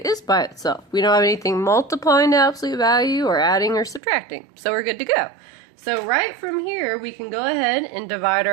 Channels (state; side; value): drops out; left; at 4.0 s